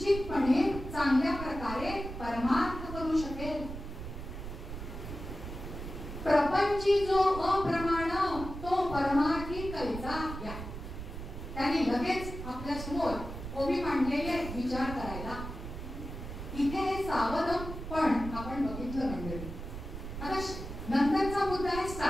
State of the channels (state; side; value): noise; right; rumble, 9 dB below the sound